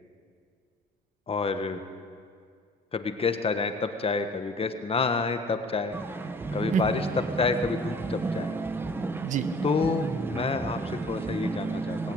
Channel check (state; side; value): normal; both; correlation 0.50